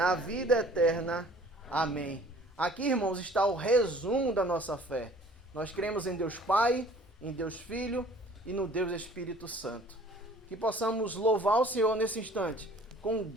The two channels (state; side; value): normal; both; correlation 0.52